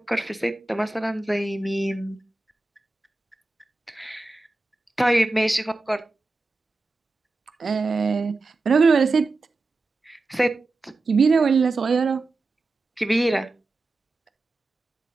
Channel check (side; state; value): left; quieter; 3.3 dB